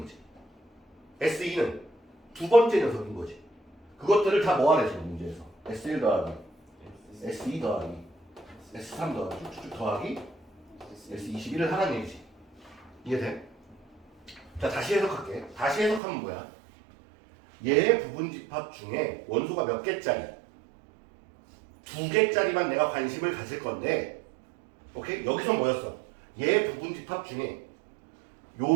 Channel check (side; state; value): left; drops out; at 16.0 s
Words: 거지. S2는 두 번째 녀석인 거지. 그것들을 다 모아내 지금 문제에서. S1 더하기 S2 더하기 S3 더하기 쭉쭉 더하기 S21을 하라는 얘기지. 이해돼? 자, 다시 해석할게. 다시 해석하면 뭐야? 얘의 부분집합 중에 원소가 몇 개짜리? 2개짜리만 내가 관심을 가질 건데, 오케이? 여기서 뭐였어? 얘의 부분집합 중에